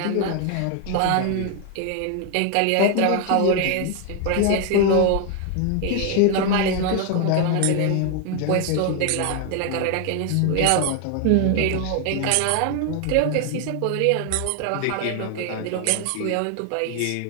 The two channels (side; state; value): both; different; correlation 0.01